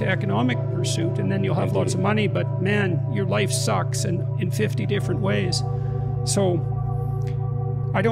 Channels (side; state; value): both; identical; correlation 1.00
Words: economic pursuit, and then you'll have lots of money, but man, your life sucks in 50 different ways. So I